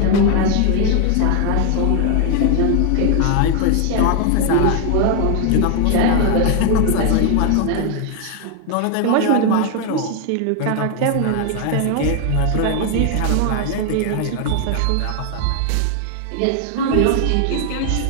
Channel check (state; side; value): different; both; correlation 0.00